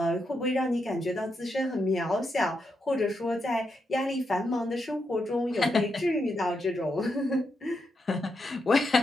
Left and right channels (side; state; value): both; normal; correlation 0.83